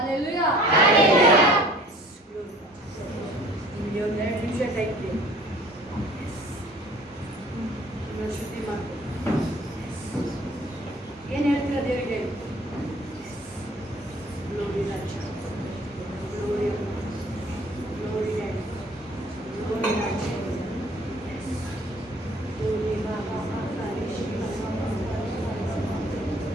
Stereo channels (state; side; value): normal; both; correlation 0.52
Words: ನಿಮಗೆ ಒಂದು 2 ನಿಮಿಷ ಟೈಮ್ ಇದೆ. ಶುದ್ಧಿ ಮಾಡ್ತೀನಿ. ಏನು ಹೇಳ್ತೀರಾ ದೇವರಿಗೆ? ಗ್ಲೋರಿ ರಾಜ, ಗ್ಲೋರಿ, ಗ್ಲೋರಿ ಡ್ಯಾಡಿ, ಗ್ಲೋರಿ ರಾಜ, ಗ್ಲೋರಿ ಬಾಬಾ, ಮಾತಾರಿ ಶಿವ,